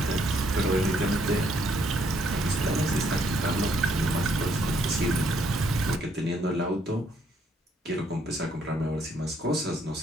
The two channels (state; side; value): normal; both; correlation 0.70